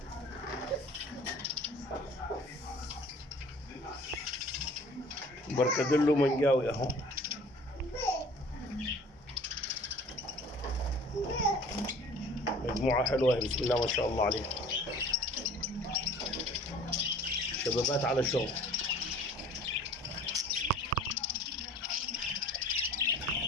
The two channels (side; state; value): both; normal; correlation 0.48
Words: بركدلو منجاوي اهو. مجموعة حلوة بسم الله ما شاء الله عليها، شبابات على شغل.